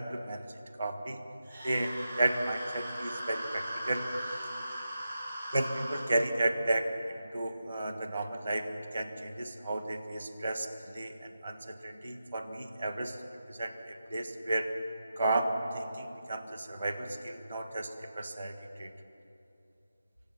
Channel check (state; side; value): inverted; both; correlation -0.89